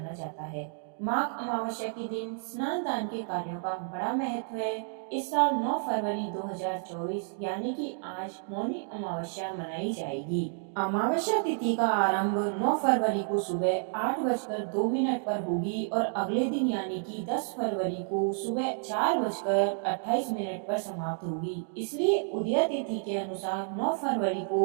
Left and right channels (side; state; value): left; silent; 58 dB below the other